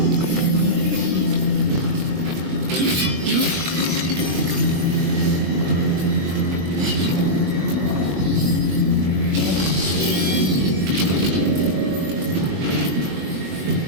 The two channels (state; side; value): late; left; 21 ms